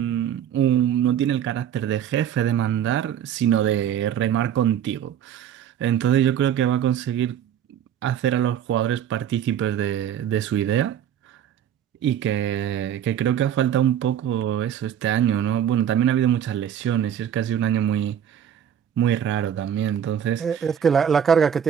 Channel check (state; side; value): quieter; left; 9.5 dB